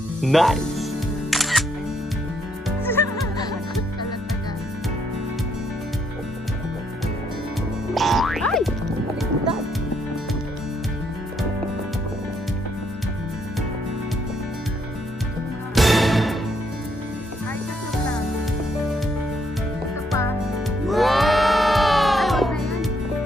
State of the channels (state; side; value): normal; both; correlation 0.73